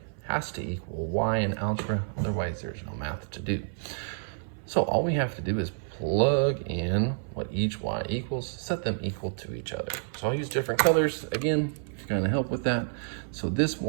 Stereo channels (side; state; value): left; silent; 56 dB below the other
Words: has to equal y in algebra, otherwise there's no math to do. So all we have to do is plug in what each y equals, set them equal to each other. So I'll use different colors, again, to kind of help with that. So this